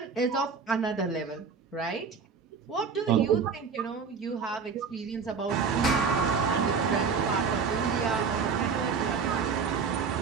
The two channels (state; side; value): quieter; left; 5.6 dB